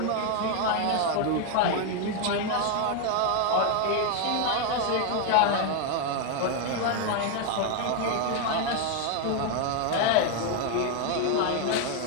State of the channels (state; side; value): different; both; correlation 0.01